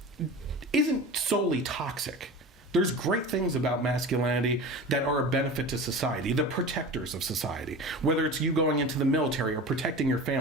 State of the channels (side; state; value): both; normal; correlation 0.33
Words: isn't solely toxic. There's great things about masculinity that are a benefit to society, the protectors of society, whether it's you going into the military or protecting your